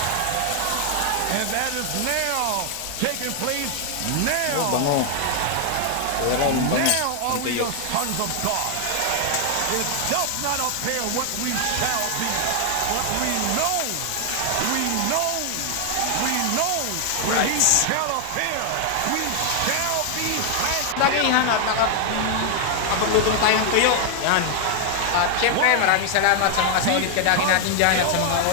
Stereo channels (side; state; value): both; different; correlation 0.00